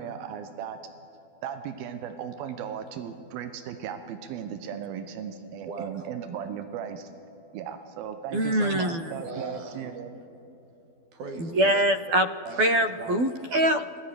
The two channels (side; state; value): left; late; 12 ms